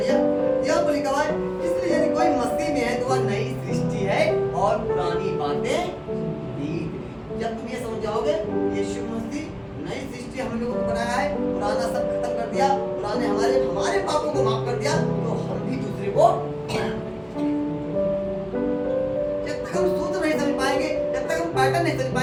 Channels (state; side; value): identical; both; correlation 1.00